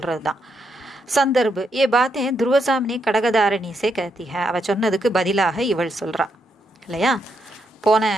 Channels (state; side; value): normal; both; correlation 0.79